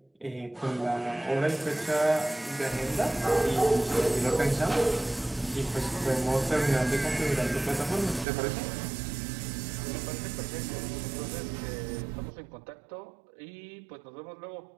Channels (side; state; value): left; drops out; at 8.2 s